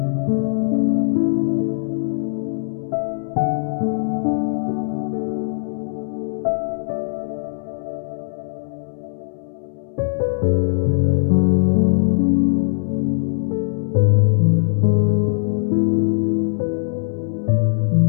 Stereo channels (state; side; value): silent; right; 64 dB below the other